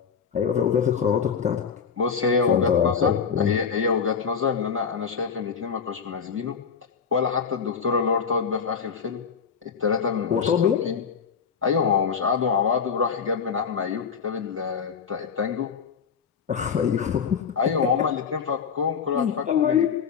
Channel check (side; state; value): right; quieter; 6.4 dB